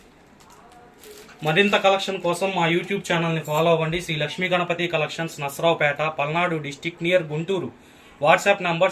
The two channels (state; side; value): identical; both; correlation 1.00